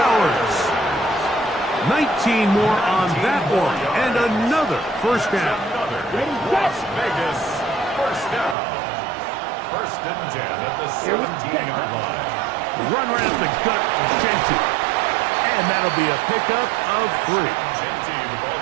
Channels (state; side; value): drops out; left; at 8.6 s